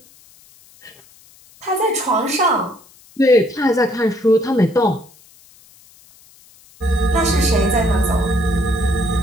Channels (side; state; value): left; noise; hiss, 27 dB below the sound